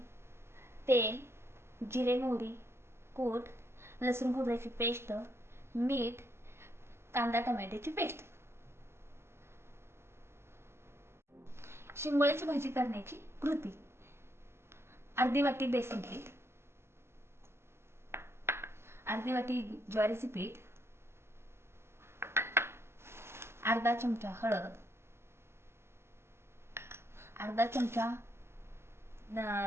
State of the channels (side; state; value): left; late; 0.12 ms